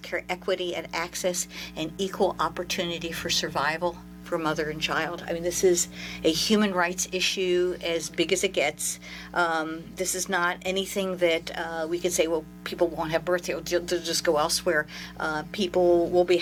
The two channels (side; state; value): both; identical; correlation 1.00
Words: equity and access, and equal opportunity for survival for mother and child. I mean, this is a human rights issue as big as it gets. This is not anything that we could say, well, people won't have birth, they'll just go elsewhere. People will be